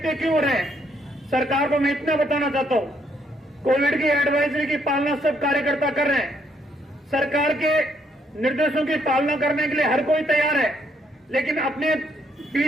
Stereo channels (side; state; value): both; normal; correlation 0.72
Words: क्यों हो रहे हैं। सरकार को मैं इतना बताना चाहता हूं, कोविड की एडवाइजरी की पालना सब कार्यकर्ता कर रहे हैं। सरकार के निर्देशों की पालना करने के लिए हर कोई तैयार है, लेकिन अपने